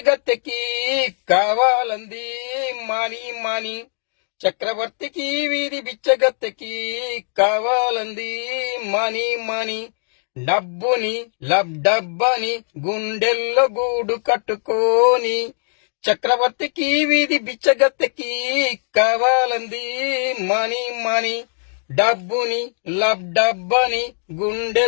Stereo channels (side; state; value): right; silent; digital silence